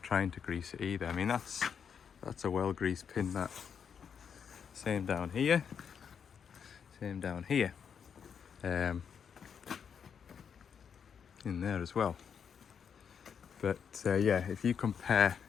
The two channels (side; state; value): right; quieter; 7.2 dB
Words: trying to grease it either. I mean, that's a well greased pin, that. Same down here. Same down here. You in there as well. But yeah, if you compare